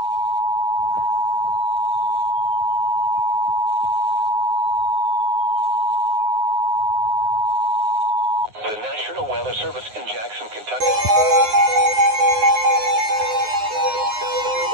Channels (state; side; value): late; left; 9.5 ms